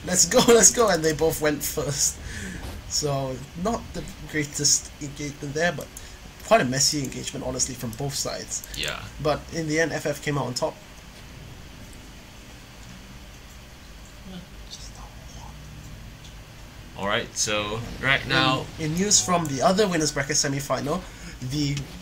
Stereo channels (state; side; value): identical; both; correlation 1.00